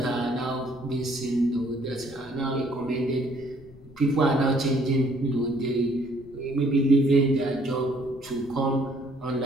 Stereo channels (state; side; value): noise; left; rumble, 21 dB below the sound